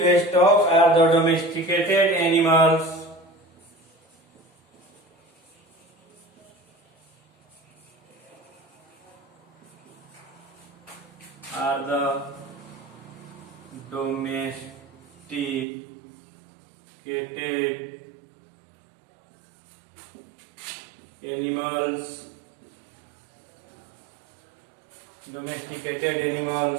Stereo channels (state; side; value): drops out; left; at 15.7 s